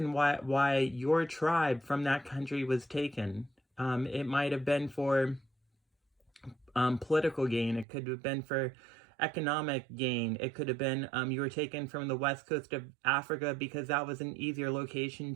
why your tribe from that country was taken. It might have been for political gain. It could have been for economic gain. It could have been you were taken from the west coast of Africa because that was an easier location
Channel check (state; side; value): drops out; left; at 7.9 s